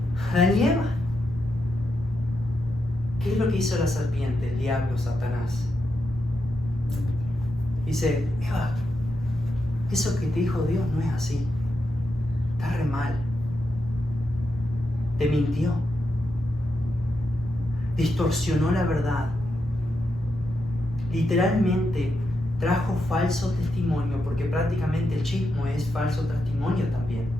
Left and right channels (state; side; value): normal; both; correlation 0.84